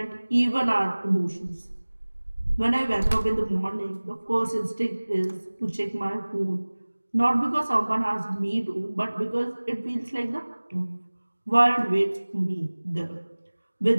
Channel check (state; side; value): inverted; both; correlation -1.00